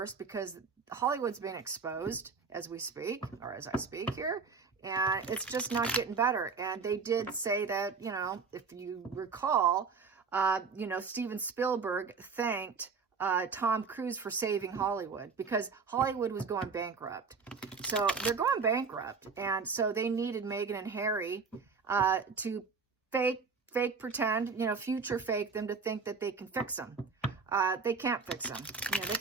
because Hollywood's being exposed as we speak, or as I speak here. And it's just not getting better. And they did say that, if you recall, Steven Spielberg thanked Tom Cruise for saving Hollywood because Hollywood was going bankrupt. So they're going bankrupt. And so they needed Meghan and Harry to fake pretend, future fake them to think that they can fix them. They can't fix them. They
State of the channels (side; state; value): left; quieter; 5.1 dB